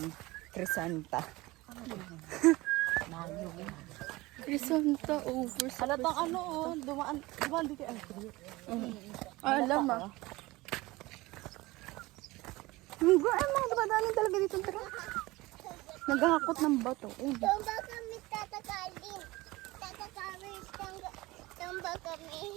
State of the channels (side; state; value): left; quieter; 20.6 dB